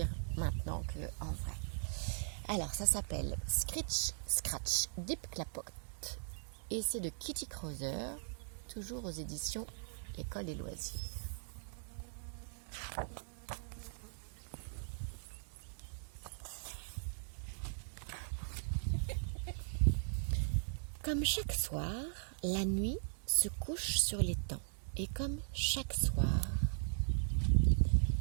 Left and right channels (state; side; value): silent; left; digital silence